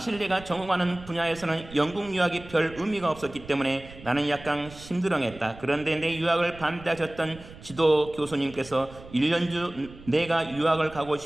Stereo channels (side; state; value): right; noise; rumble, 18 dB below the sound